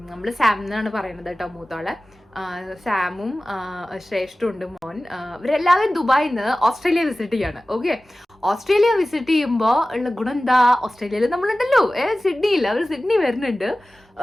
നമ്മൾ സാം എന്നാണ് പറയുന്നത് കേട്ടോ മൂത്തോളെ, സാമും ശ്രേഷ്ഠും ഉണ്ട് മോൻ. ഇവരെല്ലാവരും ദുബായിൽ നിന്ന് ഓസ്ട്രേലിയ വിസിറ്റ് ചെയ്യാണ്. ഓക്കെ, ഓസ്ട്രേലിയ വിസിറ്റ് ചെയ്യുമ്പോൾ ഉള്ള ഗുണം എന്താ, ഓസ്ട്രേലിയയിൽ നമ്മളുണ്ടല്ലോ, സിഡ്നിയിൽ, അവർ സിഡ്നി വരുന്നുണ്ട്.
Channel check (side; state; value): both; normal; correlation 0.96